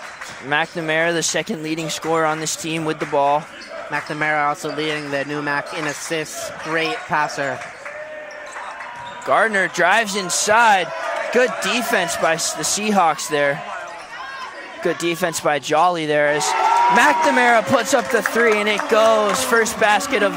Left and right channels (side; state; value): both; identical; correlation 1.00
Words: McNamara, the second leading scorer on this team with the ball. McNamara also leading the NEWMAC in assists. Great passer. Gardner drives inside. Good defense by the Seahawks there. Good defense by Jolly there as McNamara puts up the three and it goes. First basket of